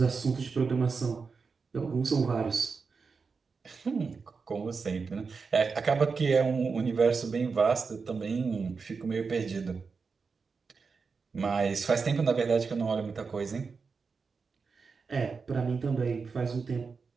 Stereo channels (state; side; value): quieter; left; 5.0 dB